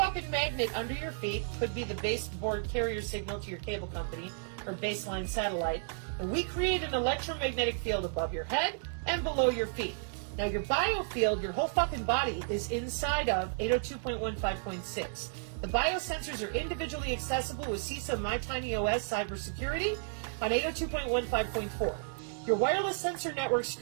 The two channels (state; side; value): silent; left; digital silence